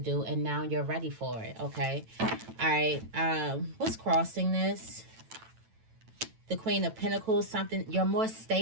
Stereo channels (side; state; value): left; late; 9.0 ms